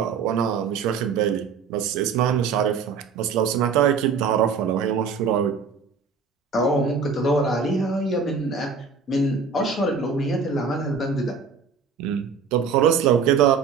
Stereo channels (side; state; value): left; quieter; 5.5 dB